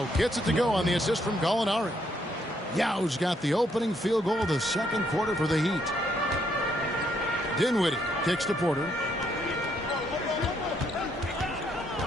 gets it to go on the assist from Gallinari. Yao's got the opening field goal of the second quarter for the Heat. Dinwiddie kicks to Porter.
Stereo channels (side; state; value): both; normal; correlation 0.72